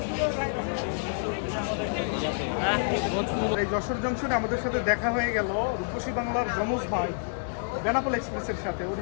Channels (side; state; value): right; silent; digital silence